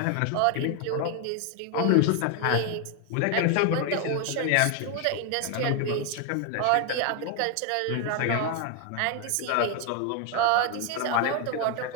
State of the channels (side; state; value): both; different; correlation 0.01